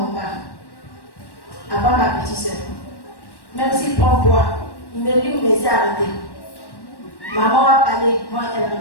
pas. Avant ma petite soeur. Même s'il prend bois, il me dit, mais c'est arrêté. Maman va parler, moi elle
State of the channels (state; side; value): late; right; 1.1 ms